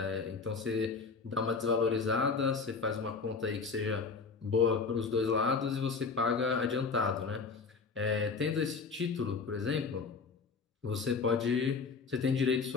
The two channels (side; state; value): right; quieter; 4.8 dB